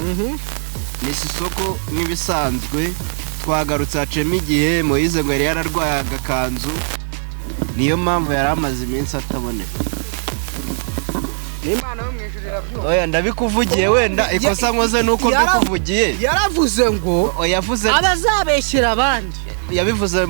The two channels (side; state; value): left; silent; digital silence